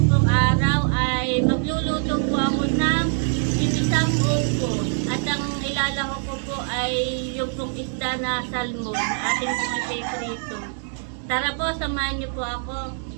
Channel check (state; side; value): silent; left; digital silence